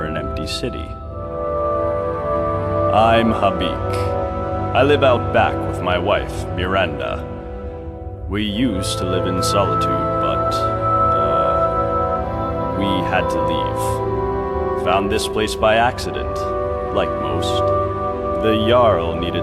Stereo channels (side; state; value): both; identical; correlation 1.00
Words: an empty city. I'm Habik. I live out back with my wife, Miranda. We used to live in solitude, but, we had to leave. Found this place by accident, like most. The Jarl